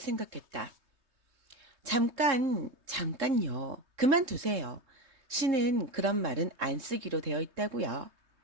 잠깐요. 그만두세요. 신은 그런 말은 안 쓰기로 되어 있다고요.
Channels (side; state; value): left; late; 3.7 ms